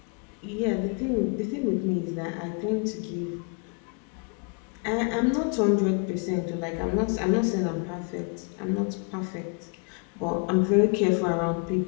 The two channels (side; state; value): right; quieter; 36.3 dB